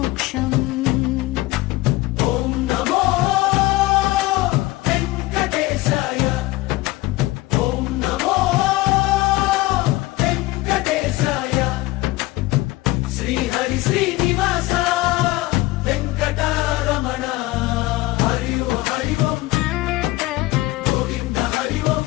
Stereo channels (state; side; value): quieter; right; 19.1 dB